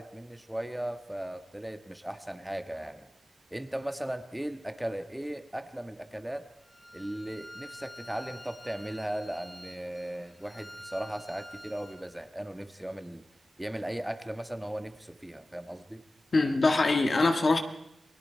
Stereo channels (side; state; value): both; normal; correlation 0.96